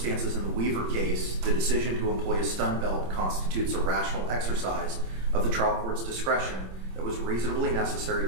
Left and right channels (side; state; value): left; late; 26 ms